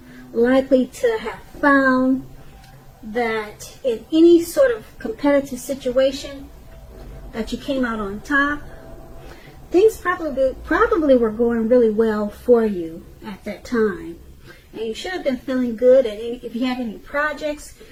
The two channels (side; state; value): both; identical; correlation 1.00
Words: likely to have found that in any sort of competitive situation that you came out on top. Things probably were going really well for you at that time. And you should have been feeling good. And if you had any projects,